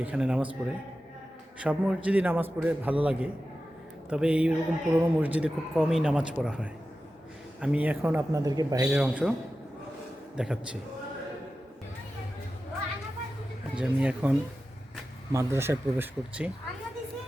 এখানে নামাজ পড়ে। সব মসজিদে নামাজ পড়ে ভালো লাগে, তবে এইরকম পুরনো মসজিদে খুব কমই নামাজ পড়া হয়। আমি এখন আপনাদেরকে বাইরের অংশ দেখাচ্ছি। যে আমি এখন মাদ্রাসায় প্রবেশ করছি।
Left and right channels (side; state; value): both; normal; correlation 0.93